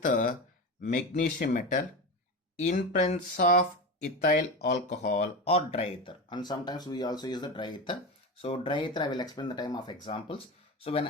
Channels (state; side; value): normal; both; correlation 0.23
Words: the magnesium metal in presence of ethyl alcohol or dry ether, and sometimes we also use the dry ether. So dry ether I will explain the time of examples. So when